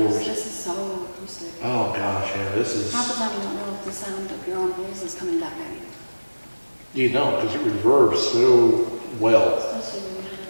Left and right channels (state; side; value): inverted; both; correlation -1.00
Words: This is so acoustic. Oh gosh, yeah, this is. Half the time you don't know if the sound of your own voice is coming back at you. You don't, because it reverbs so well. Especially when you have